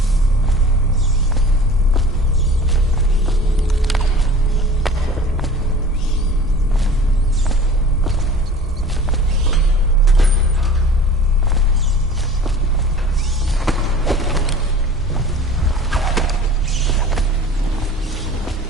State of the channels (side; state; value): both; normal; correlation 0.43